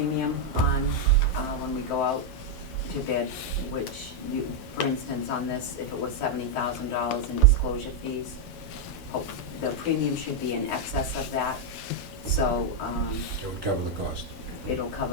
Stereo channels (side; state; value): both; normal; correlation -0.01